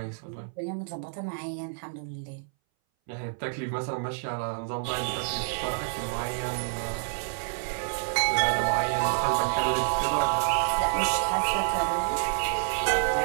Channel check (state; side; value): silent; left; 59 dB below the other